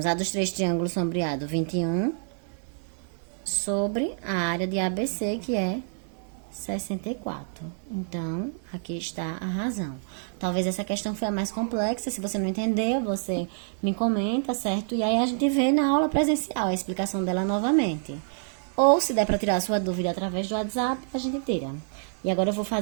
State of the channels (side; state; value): left; silent; digital silence